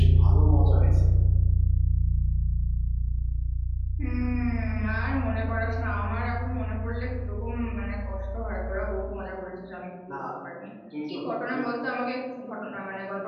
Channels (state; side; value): identical; both; correlation 1.00